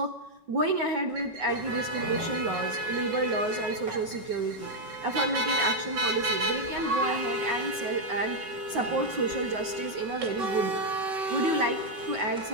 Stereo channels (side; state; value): left; late; 5.3 ms